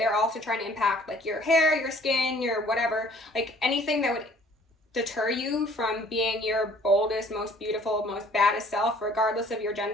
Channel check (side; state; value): both; normal; correlation 0.56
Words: also trying to impact like your hair, your skin, your whatever, like anything that would deter you from being your boldest, most beautiful, most baddest self, regardless of your